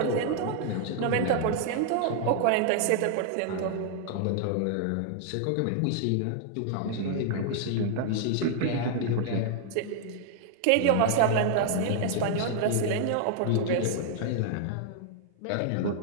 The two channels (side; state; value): both; different; correlation -0.01